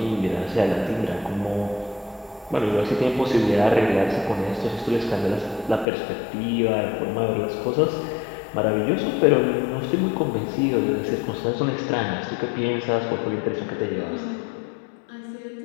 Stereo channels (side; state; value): right; drops out; at 5.9 s